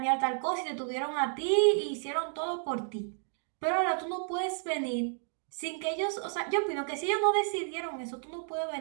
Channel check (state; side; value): silent; left; 57 dB below the other